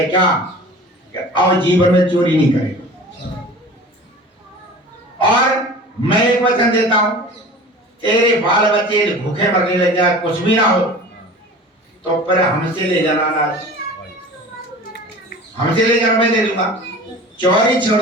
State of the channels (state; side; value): normal; both; correlation 0.39